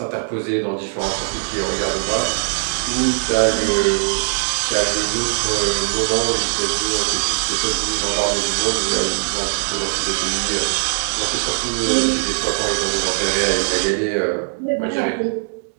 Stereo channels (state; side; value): silent; left; digital silence